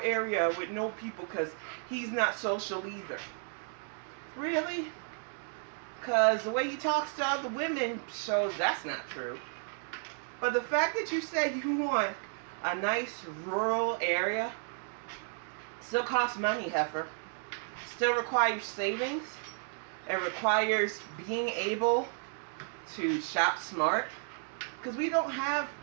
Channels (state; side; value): silent; left; 56 dB below the other